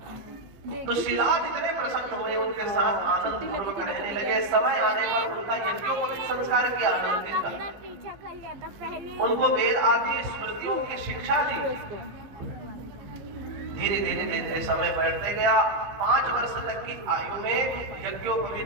तो शिलाद इतने प्रसन्न हुए, उनके साथ आनंद पूर्वक रहने लगे। समय आने पर उनका यज्ञोपवीत संस्कार किया आनंदित था। उनको वेद आदि स्मृतियों की शिक्षा दी। धीरे धीरे धीरे समय बढ़ते गया। 5 वर्ष तक की आयु में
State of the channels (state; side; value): late; left; 15 ms